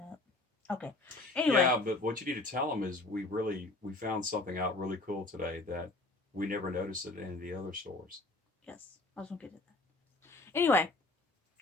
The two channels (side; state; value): right; quieter; 3.0 dB